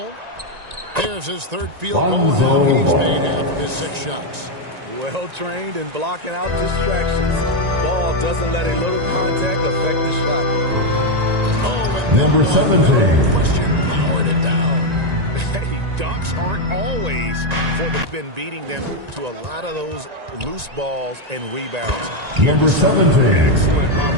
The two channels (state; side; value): late; left; 1.9 ms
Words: There's his 3rd field goal. Lonzo Now he's Ball. made half of his 6 shots. Well trained in blocking out distractions. Ball doesn't let a little contact affect the shot. Oh, and that Number one, 17. no question, powered it down. Hey, dunks aren't always for the been beating them to a lot of those loose balls and rebounds. Number 17. Excellent on